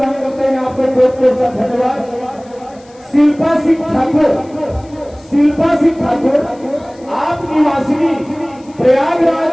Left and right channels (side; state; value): left; noise; hiss, 29 dB below the sound